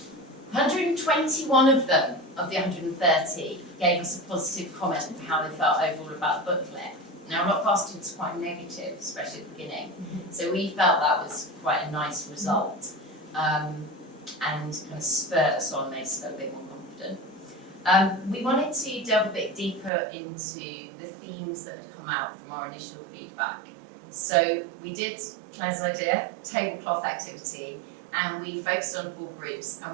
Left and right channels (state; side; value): drops out; left; at 19.9 s